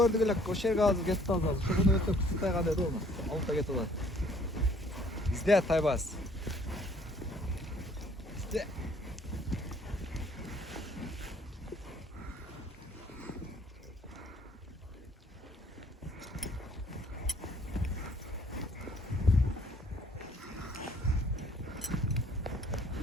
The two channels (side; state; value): both; normal; correlation 0.59